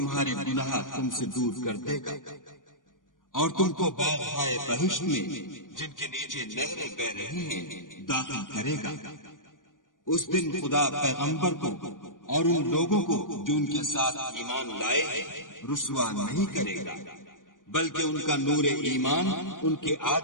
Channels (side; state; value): right; late; 0.89 ms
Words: گناہ تم سے دور کر دے گا، اور تم کو باغ بہشت میں جن کے نیچے نہریں بہ رہی ہیں داخل کرے گا۔ اس دن خدا پیغمبر کو اور ان لوگوں کو جو ان کے ساتھ ایمان لائے ہیں رسوا نہیں کرے گا، بلکہ ان کا نور ایمان ان کے